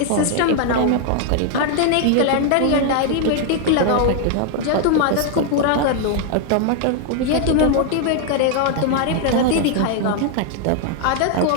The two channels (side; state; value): both; different; correlation 0.00